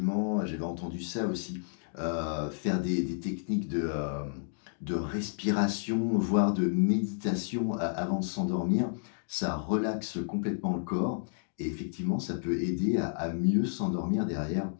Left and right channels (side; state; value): right; silent; digital silence